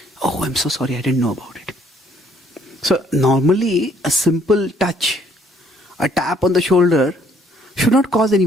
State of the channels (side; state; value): both; normal; correlation 0.64